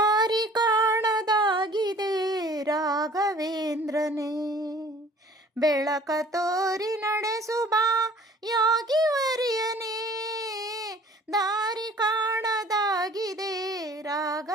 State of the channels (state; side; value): normal; both; correlation 0.50